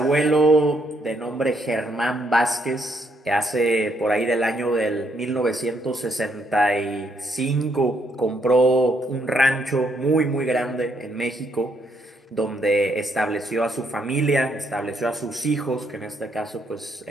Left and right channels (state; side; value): normal; both; correlation 0.73